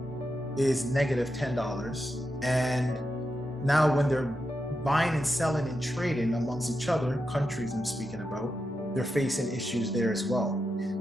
is negative $10. And now when they're buying and selling and trading amongst each other, countries I'm speaking about, they're facing issues there as well.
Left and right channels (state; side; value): normal; both; correlation 0.87